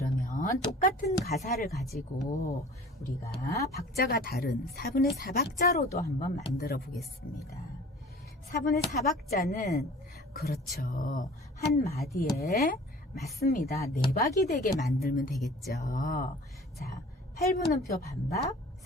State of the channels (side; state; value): both; normal; correlation 0.45